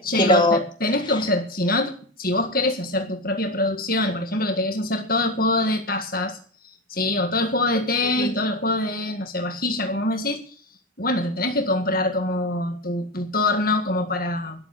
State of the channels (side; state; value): both; normal; correlation 0.19